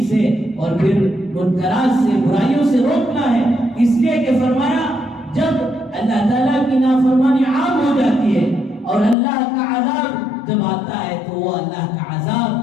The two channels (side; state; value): right; drops out; at 9.2 s